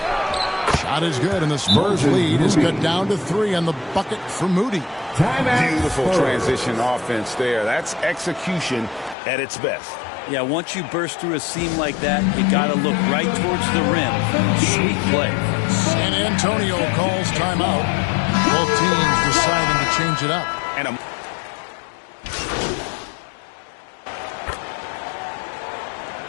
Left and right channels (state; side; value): drops out; right; at 9.2 s